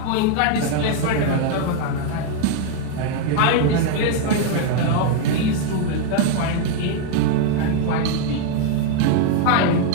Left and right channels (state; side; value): different; both; correlation 0.00